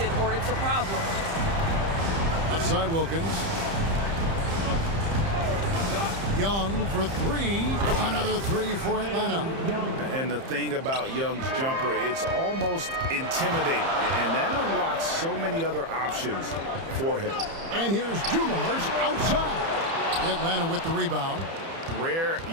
or it's a problem. Outside Wilkins. Young for 3. Another 3 for Atlanta. And the thing about Young's jumper, it's almost intimidating. And that unlocks so many other options for him. And here's Dumars outside. Atlanta with the rebound. Rare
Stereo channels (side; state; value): left; late; 30 ms